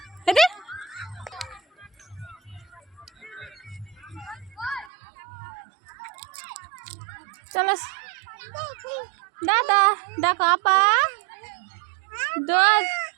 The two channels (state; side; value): drops out; left; at 4.9 s